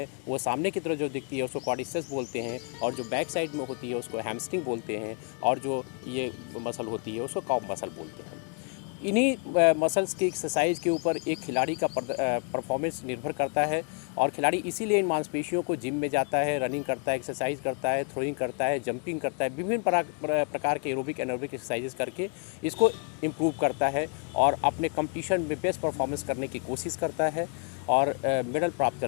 वो सामने की तरफ जो दिखती है उसको क्वाड्रिसेप्स बोलते हैं, और जो बैक साइड में होती है उसको हैमस्ट्रिंग बोलते हैं, और जो ये मसल होती है उसको कॉफ मसल बोलते हैं। इन्हीं मसल्स की एक्सरसाइज के ऊपर एक खिलाड़ी का परफॉर्मेंस निर्भर करता है, और खिलाड़ी इसीलिए इन मांसपेशियों को जिम में जाता है, रनिंग करता है, एक्सरसाइज करता है, थ्रोइंग करता है, जंपिंग करता है, विभिन्न प्रकार के एरोबिक एनारोबिक एक्सरसाइजेस करके इसको इम्प्रूव करता है और अपने कंपटीशन में बेस्ट परफॉर्मेंस करने की कोशिश करता है और मेडल प्राप्त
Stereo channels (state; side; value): quieter; right; 38.5 dB